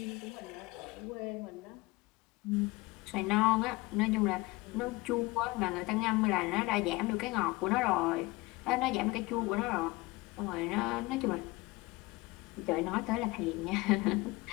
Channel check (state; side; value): quieter; right; 22.3 dB